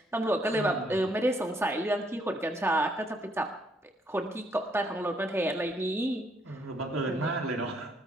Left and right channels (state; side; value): normal; both; correlation 0.70